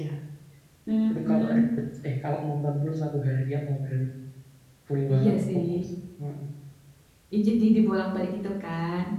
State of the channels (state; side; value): identical; both; correlation 1.00